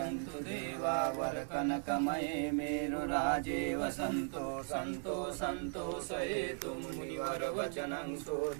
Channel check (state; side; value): silent; left; 53 dB below the other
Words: देवा वरकनकमये मेरुराजे वसन्तो सन्तोषयेतु मुनिवरवचनं